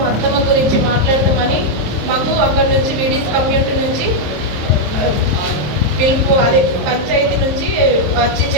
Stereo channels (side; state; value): left; late; 27 ms